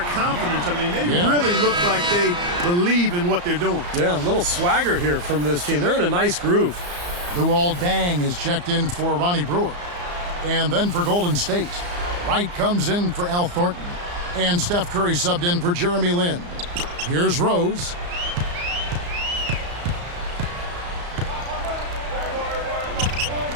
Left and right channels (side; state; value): left; late; 34 ms